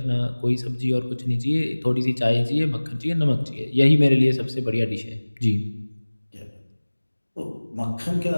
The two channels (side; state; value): both; inverted; correlation -1.00